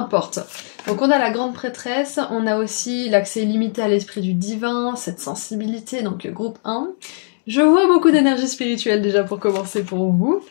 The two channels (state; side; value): silent; right; 62 dB below the other